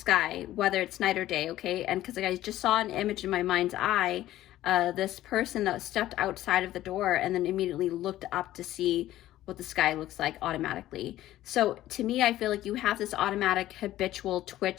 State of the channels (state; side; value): quieter; right; 14.3 dB